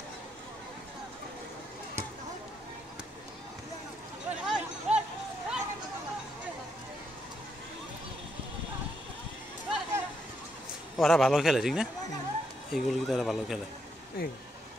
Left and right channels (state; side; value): normal; both; correlation 0.78